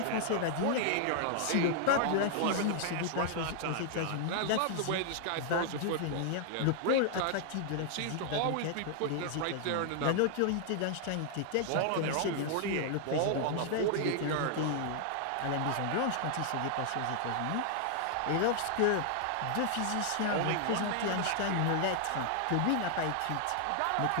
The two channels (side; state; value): both; different; correlation 0.00